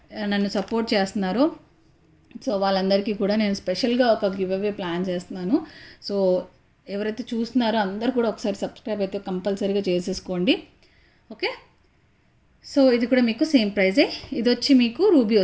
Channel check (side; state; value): both; identical; correlation 1.00